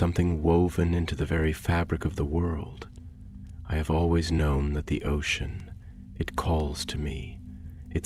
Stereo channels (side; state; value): both; identical; correlation 1.00